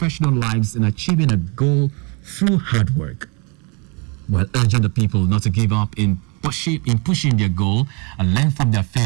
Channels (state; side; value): quieter; left; 32.3 dB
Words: lives in achieving a goal through hard work, while urging the people not to give up in pushing their goal and learn from their